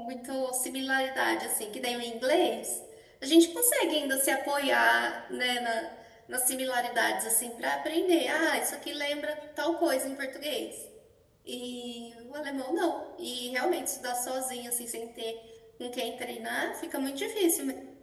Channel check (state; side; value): identical; both; correlation 1.00